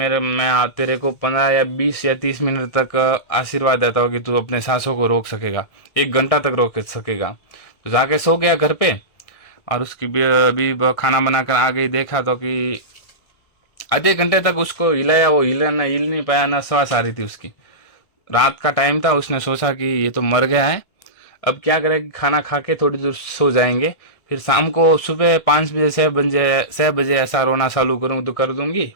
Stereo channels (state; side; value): late; right; 1.6 ms